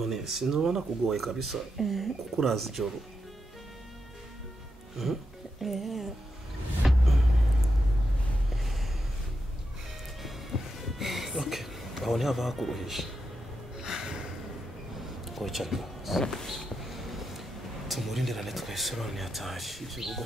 sinzobona kugoye kabisa kuko urazi ijoro okay aho ntihava hakuruhisha wicara tumurindirane twese none yataje ibyo rugo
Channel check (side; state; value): both; normal; correlation 0.85